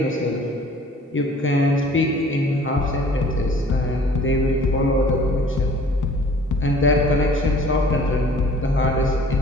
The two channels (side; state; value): both; normal; correlation 0.51